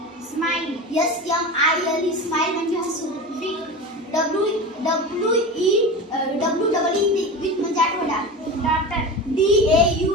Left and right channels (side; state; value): both; normal; correlation 0.28